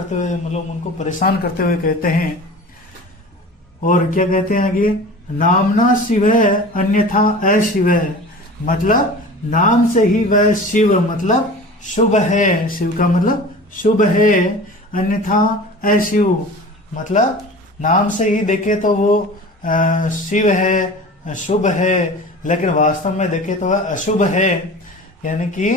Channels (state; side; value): normal; both; correlation 0.38